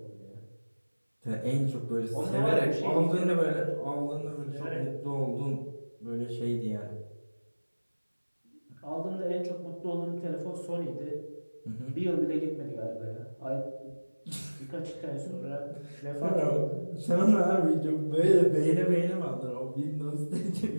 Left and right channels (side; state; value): both; inverted; correlation -1.00